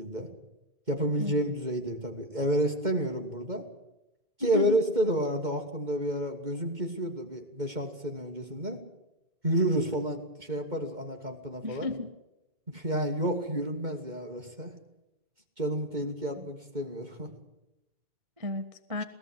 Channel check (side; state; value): left; late; 2.1 ms